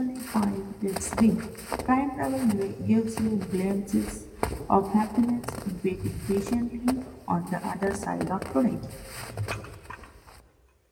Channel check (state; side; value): identical; both; correlation 1.00